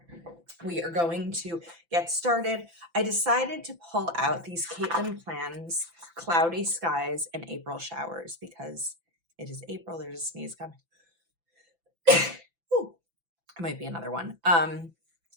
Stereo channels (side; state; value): left; late; 5.9 ms